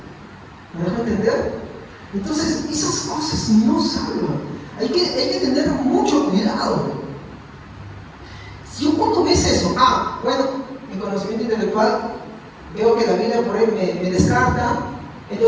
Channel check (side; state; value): both; identical; correlation 1.00